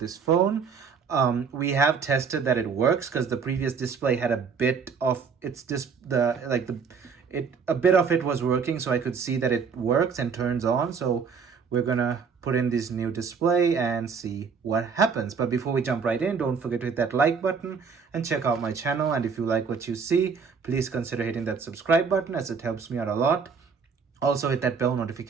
phone. We have tested that it works because the previous display had a bit of a bit of it was working, so I could see that it works and turns on. So we're gonna put in this new display and see what happens. But before we jump right in, don't forget to hit that like button and check out my channel. And if you like what you see, please consider hitting that subscribe button, as it helps me out a lot. Also hit that bell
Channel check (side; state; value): left; quieter; 5.8 dB